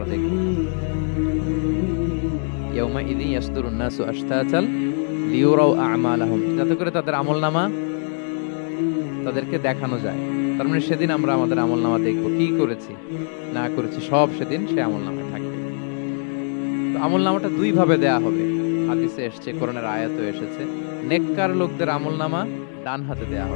দেখব। ইয়াউমা ইদি ইয়াসদুরুন নাসু আশতাতাল লিউরাউ আমালাহুম, যাতে করে তাদের আমলনামা তাদেরকে দেখানো যায়। তার মানে সেদিন আমরা আমাদের আমলনামা দেখব, কি করেছি না করেছি সব সেদিন সে আমলনামায় থাকবে। তো আমলনামাটা 2 ভাবে দেয়া হবে। হাদিসে এসেছে, কোরআনের আয়াতও এসেছে। নেককার লোকদের আমলনামা ডান হাতে দেয়া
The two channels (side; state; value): right; silent; 64 dB below the other